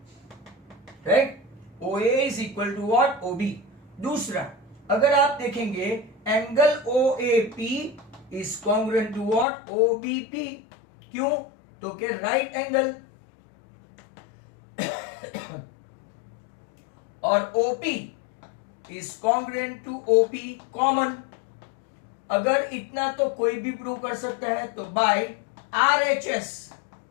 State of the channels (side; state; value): right; drops out; at 9.5 s